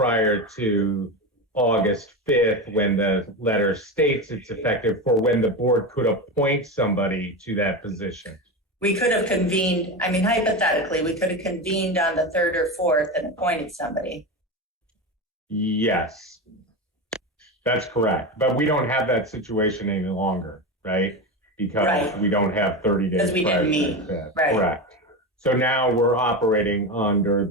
to August 5th, when the letter states it's effective for when the board could appoint somebody to that position. We could have convened, I mean, hypothetically, we could have convened on the 3rd or 4th and appointed somebody. Yes, that's correct. But we don't have that situation any longer, right? Because Right. we don't have 30 days. Because we prior didn't to meet. that. Right. Correct. So now we're operating under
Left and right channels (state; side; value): normal; both; correlation 0.20